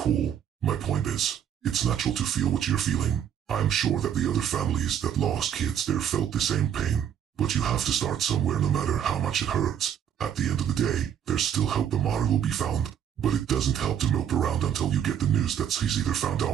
cool. My point is, it's natural to feel what you're feeling. I'm sure that the other families that lost kids there felt the same pain. But you have to start somewhere no matter how much it hurts. At the end of the day, there's still hope Amara will be found. But it doesn't help to mope around until you get the news that he's either found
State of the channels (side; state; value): left; quieter; 9.1 dB